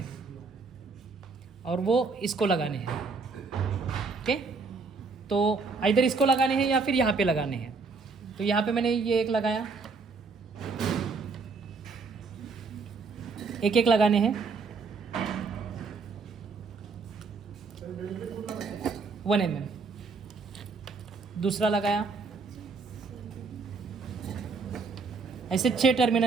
और वो इसको लगाने हैं। ओके, तो इधर इसको लगाने हैं या फिर यहाँ पे लगाने हैं। तो यहाँ पे मैंने ये एक लगाया, एक एक लगाने हैं। 1 mm, दूसरा लगाया। ऐसे 6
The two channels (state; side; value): quieter; left; 4.5 dB